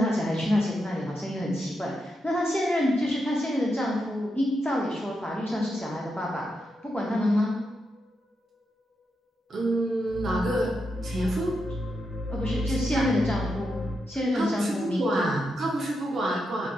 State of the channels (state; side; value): normal; both; correlation 0.85